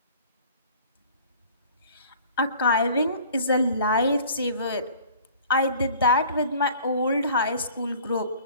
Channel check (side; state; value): both; inverted; correlation -0.49